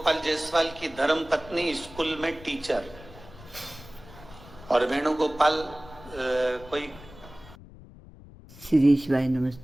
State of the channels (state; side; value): noise; left; rumble, 19 dB below the sound